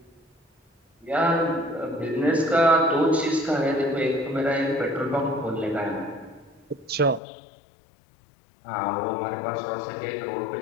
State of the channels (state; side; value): drops out; right; at 7.2 s